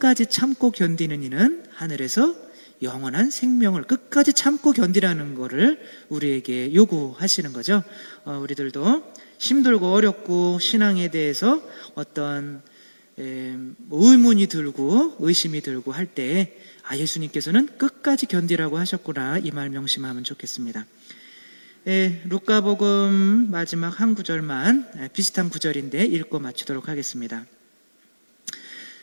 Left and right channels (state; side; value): inverted; both; correlation -1.00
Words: 참고 견디는 이는 하늘에서 영원한 생명을, 끝까지 참고 견디라는 거를 우리에게 요구하시는 거죠. 우리들도 힘들고 어렵고 신앙에 대해서 어떤 의문이 들고 의심이 들고 할 때 예수님께서는 끝까지 견디라고 하셨구나, 이 말 명심하면 좋겠습니다. 루카복음 마지막 한 구절만 비슷한 구절인데 읽고 마치도록 하겠습니다.